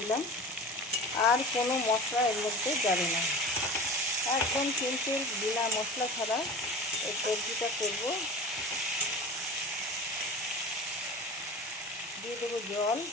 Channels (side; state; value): both; normal; correlation 0.35